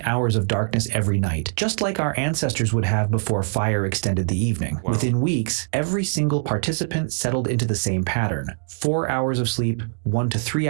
hours of darkness every night, just like our ancestors would have before fire extended the evening. Wow. Within weeks, every single participant settled into the same pattern. 4 hours of sleep, 1 to 3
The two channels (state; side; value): silent; left; digital silence